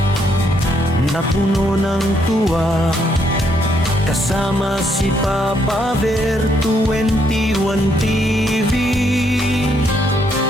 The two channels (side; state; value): both; normal; correlation 0.73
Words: na puno ng tuwa. Kasama si Papa Bear, 21 TV.